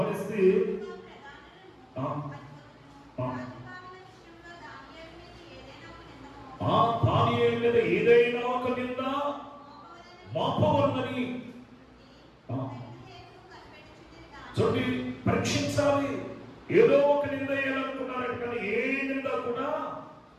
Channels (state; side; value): identical; both; correlation 1.00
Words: దానియేలు మీద ఏదైనా ఒక నింద మోపవలనని చూడండి, పరీక్షించాలి. ఏదో ఒక నింద వేయాలనుకున్నారట, కానీ ఏ నింద కూడా